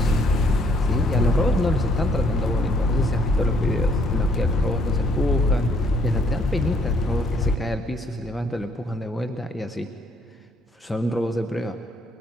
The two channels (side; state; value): both; normal; correlation 0.66